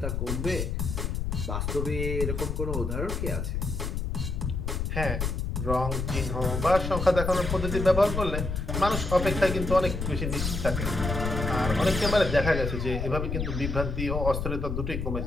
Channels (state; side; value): noise; left; rumble, 2 dB below the sound